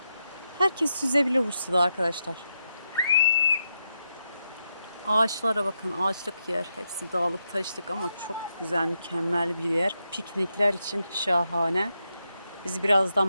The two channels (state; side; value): inverted; both; correlation -0.84